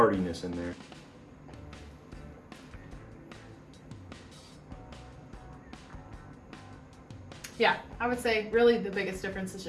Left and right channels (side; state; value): both; identical; correlation 1.00